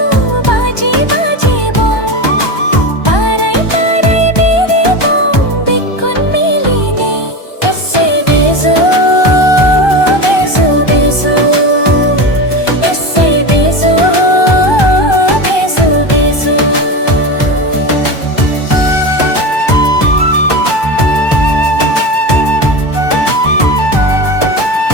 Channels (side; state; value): right; late; 1.2 ms